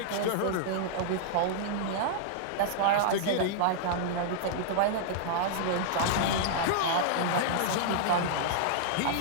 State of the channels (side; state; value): both; different; correlation -0.02